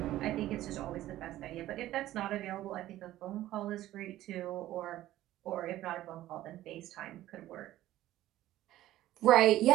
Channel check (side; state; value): left; quieter; 14.5 dB